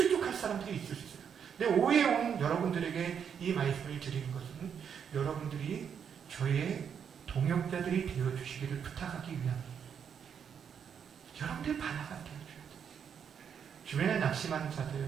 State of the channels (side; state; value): left; quieter; 7.6 dB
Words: 사람들이 있을 수 있어요. 근데 오후에 온 여러분들에게 이 말씀을 드리는 것은 여러분들이 저의 동역자들이 되어주시기를 부탁하기 위함입니다. 여러분들이 바나가 되어줘야 돼요. 주변에 낙심한